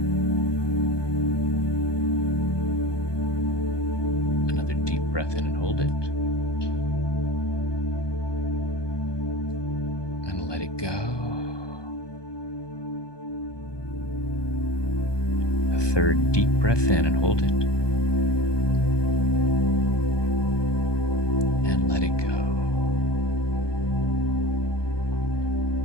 Another deep breath in and hold it. And let it go. A third deep breath in and hold it. And let it go.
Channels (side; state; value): right; late; 1.2 ms